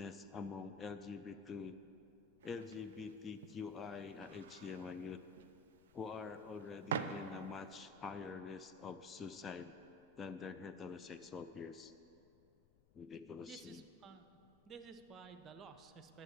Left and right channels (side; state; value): left; noise; rumble, 26 dB below the sound